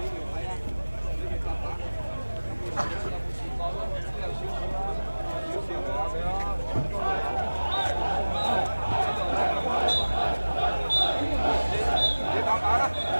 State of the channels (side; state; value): both; inverted; correlation -1.00